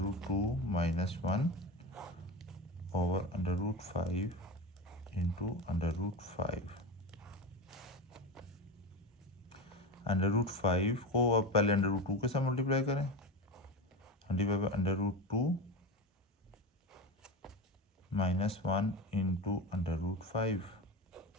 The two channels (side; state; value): both; normal; correlation 0.23